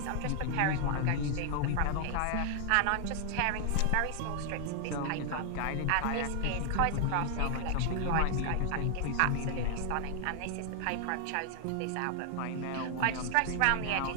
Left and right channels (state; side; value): different; both; correlation 0.00